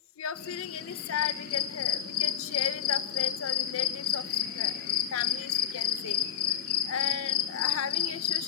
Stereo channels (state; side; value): quieter; right; 9.5 dB